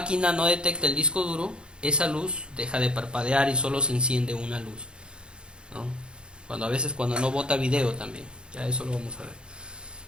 no detecta el disco duro, esa luz deja de parpadear y solo se enciende una luz, ¿no? Cuando no bota video también, ya eso lo vamos a ver.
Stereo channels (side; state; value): left; late; 0.052 ms